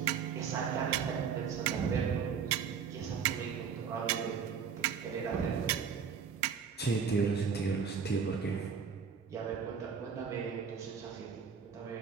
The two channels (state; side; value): quieter; left; 6.6 dB